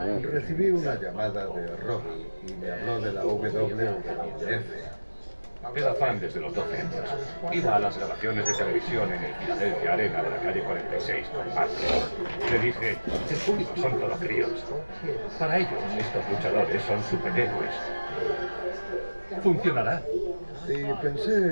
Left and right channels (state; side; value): inverted; both; correlation -1.00